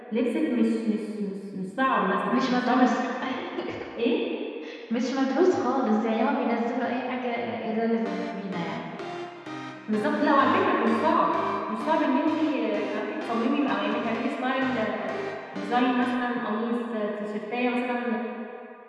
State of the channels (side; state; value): both; identical; correlation 1.00